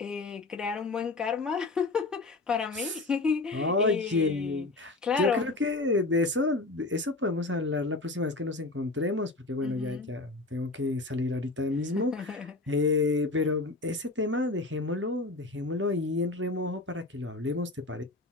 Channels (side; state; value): right; quieter; 3.2 dB